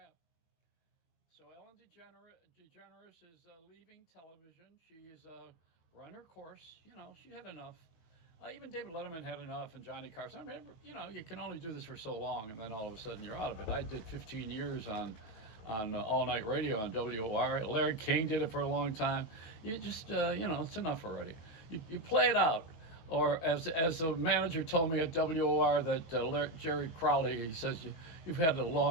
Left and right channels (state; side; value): late; right; 18 ms